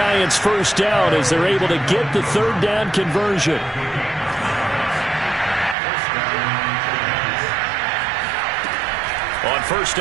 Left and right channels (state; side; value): drops out; left; at 5.8 s